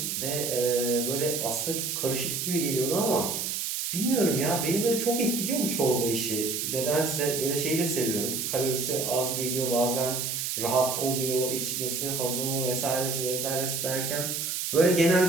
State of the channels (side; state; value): right; noise; hiss, 2 dB below the sound